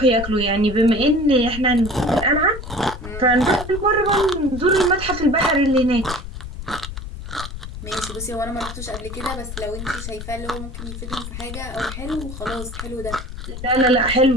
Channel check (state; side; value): noise; left; rumble, 9 dB below the sound